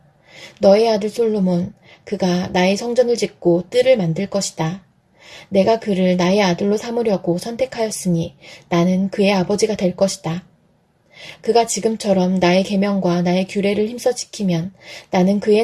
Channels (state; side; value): identical; both; correlation 1.00